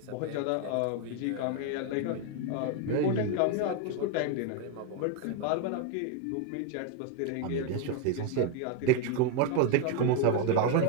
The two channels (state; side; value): different; both; correlation 0.01